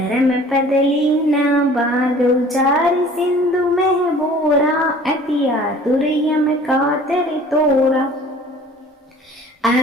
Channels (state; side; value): normal; both; correlation 0.49